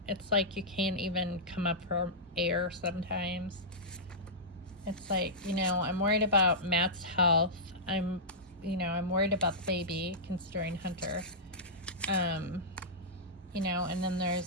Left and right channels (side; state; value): both; normal; correlation -0.14